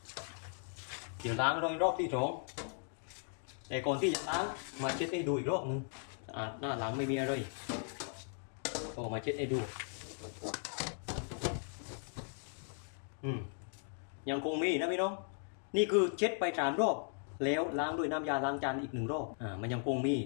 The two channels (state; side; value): silent; right; 53 dB below the other